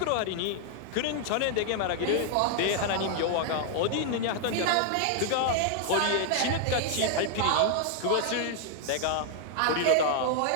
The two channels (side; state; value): both; different; correlation 0.00